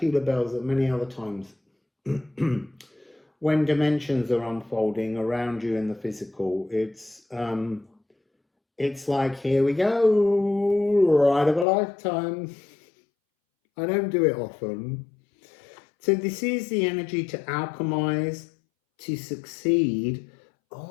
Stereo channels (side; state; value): right; drops out; at 11.7 s